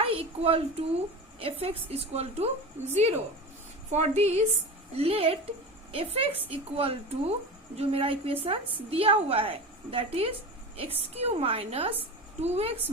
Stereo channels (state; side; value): normal; both; correlation 0.29